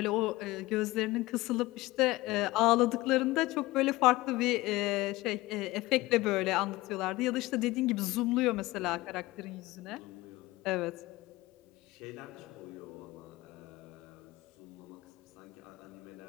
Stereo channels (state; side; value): quieter; right; 19.5 dB